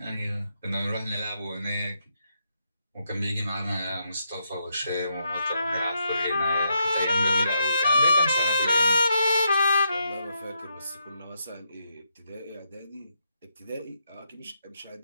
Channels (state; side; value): inverted; both; correlation -0.80